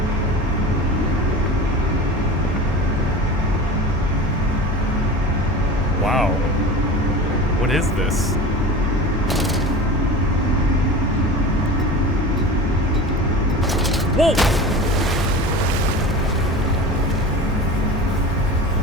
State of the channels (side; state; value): both; normal; correlation 0.34